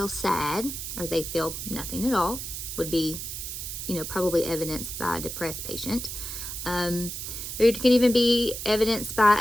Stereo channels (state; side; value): noise; right; hiss, 6 dB below the sound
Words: sad, or they feel nothing at all, would be, probably evidenced by a depressed patient. Or it can even be evidenced